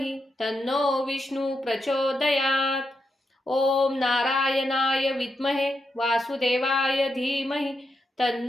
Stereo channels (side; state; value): both; normal; correlation 0.85